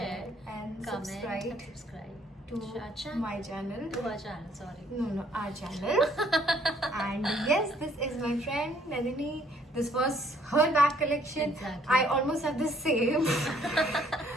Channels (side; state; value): both; normal; correlation 0.64